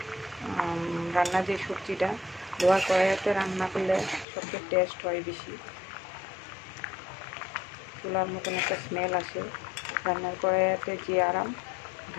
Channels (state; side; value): drops out; right; at 4.2 s